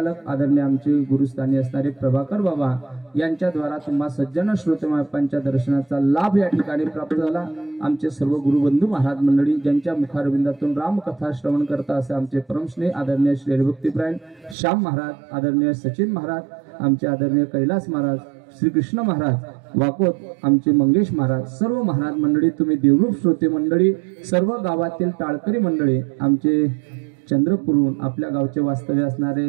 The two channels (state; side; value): drops out; left; at 14.6 s